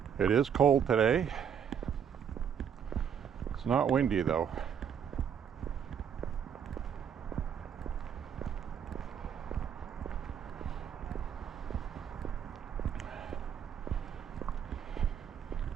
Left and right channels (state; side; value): quieter; left; 8.1 dB